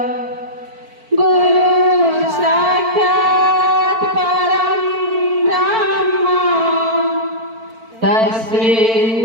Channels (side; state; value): left; late; 4.5 ms